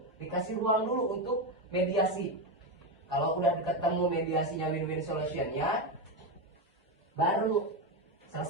dikasih ruang dulu untuk mediasi. Kalau udah ketemu mediasinya, win-win solutionnya, baru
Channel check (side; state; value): both; normal; correlation 0.11